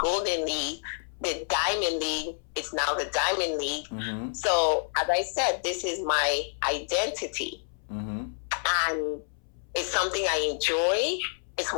League, the Diamond League. It's now the Diamond League. Mm-hmm. So, as I said, this is my identity. Mm-hmm. And it's something I enjoy. It's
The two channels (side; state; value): right; silent; 59 dB below the other